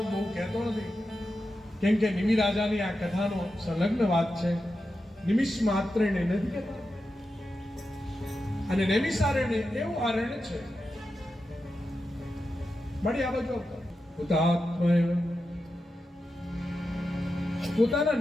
બહુ કહેતો નથી, કેમ કે નિમિ રાજાની આ કથાનો સંલગ્ન વાત છે. નિમિષ માત્ર ને નથી કહેતા. અને નૈમિષારણ્ય એવું આરણ્ય છે. મળી આ બાજુ હુતાત્મા પોતાના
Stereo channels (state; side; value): normal; both; correlation 0.90